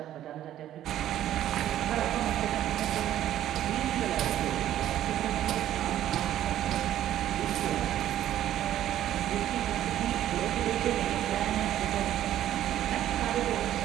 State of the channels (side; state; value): left; quieter; 12.2 dB